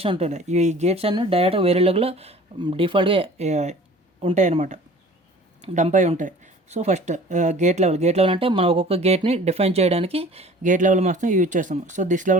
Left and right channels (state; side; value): normal; both; correlation 0.46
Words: ఉంటున్నాయి. ఈ గేట్స్ అన్నీ డైరెక్ట్గా వెరిలాగ్లో డిఫాల్ట్గా ఉంటాయి అన్నమాట, డంప్ అయి ఉంటాయి. సో ఫస్ట్ గేట్ లెవెల్ అంటే మనం ఒక్కొక్క గేట్ని డిఫైన్ చేయడానికి గేట్ లెవెల్ మాత్రం యూజ్ చేస్తాము. So this